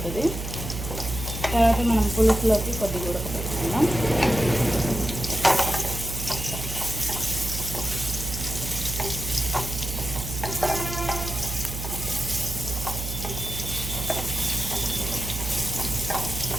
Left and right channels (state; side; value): noise; right; hum, 6 dB below the sound